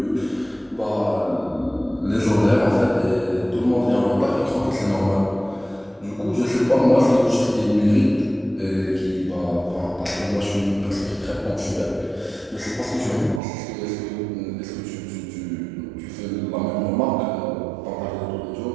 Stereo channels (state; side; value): drops out; left; at 13.4 s